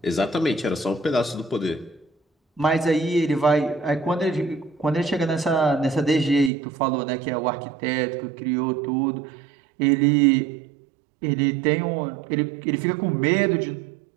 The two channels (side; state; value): left; drops out; at 6.5 s